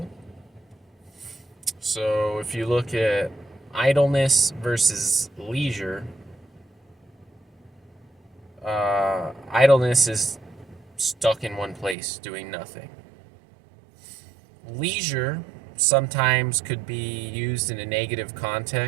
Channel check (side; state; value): left; drops out; at 12.0 s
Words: So if you look at idleness versus leisure, idleness is stuck in one place doing nothing. Leisure sometimes could be used in a negative